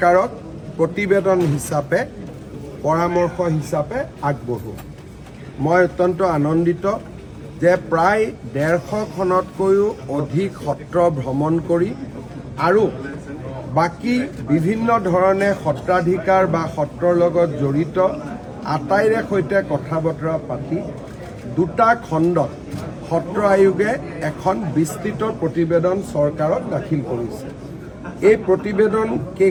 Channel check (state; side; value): identical; both; correlation 1.00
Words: প্ৰতিবেদন হিচাপে পৰামৰ্শ হিচাপে আগবঢ়োৱা। মই অত্যন্ত আনন্দিত যে প্ৰায় 150খনতকৈও অধিক সত্ৰ ভ্ৰমণ কৰি আৰু বাকী বিভিন্ন ধৰণে সত্ৰাধিকাৰ বা সত্ৰৰ লগত জড়িত আটাইৰে সৈতে কথা বতৰা পাতি দুটা খণ্ডত সত্ৰ আয়োগে এখন বিস্তৃত প্ৰতিবেদন চৰকাৰক দাখিল কৰিছে। এই প্ৰতিবেদন